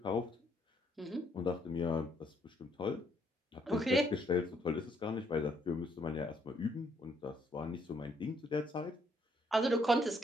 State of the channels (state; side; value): normal; both; correlation 0.70